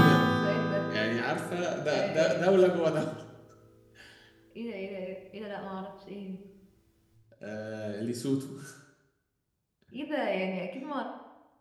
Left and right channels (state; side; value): identical; both; correlation 1.00